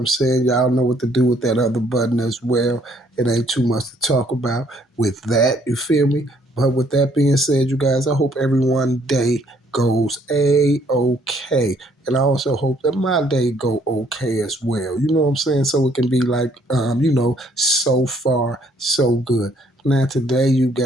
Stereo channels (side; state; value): both; normal; correlation 0.65